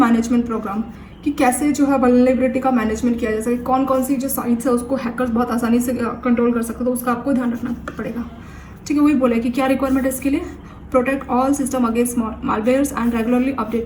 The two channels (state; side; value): identical; both; correlation 1.00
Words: program, कि कैसे जो है वल्नरेबिलिटी का मैनेजमेंट किया जा सके, कौन कौन सी जो साइट्स है उसको हैकर्स बहुत आसानी से कंट्रोल कर सकते, तो उसका आपको ध्यान रखना पड़ेगा। ठीक है, वही बोला है कि क्या रिक्वायरमेंट है इसके लिए, protect all system against malwares and regularly